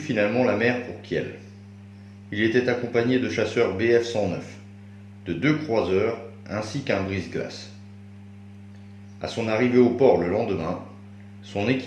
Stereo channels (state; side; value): identical; both; correlation 1.00